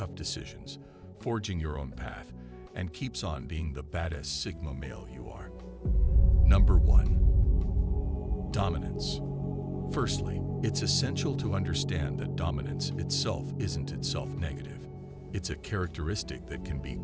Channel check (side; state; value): both; identical; correlation 1.00